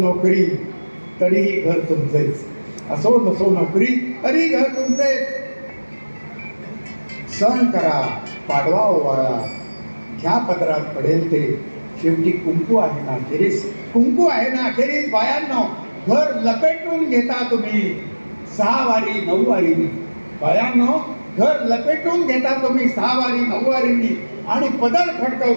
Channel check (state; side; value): inverted; both; correlation -1.00